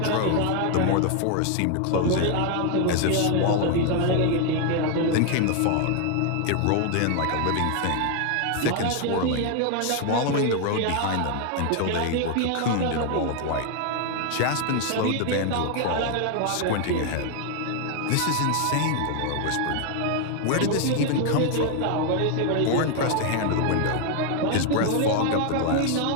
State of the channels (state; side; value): different; both; correlation 0.01